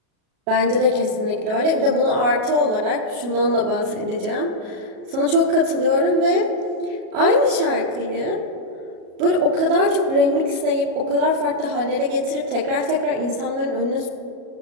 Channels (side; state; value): left; late; 37 ms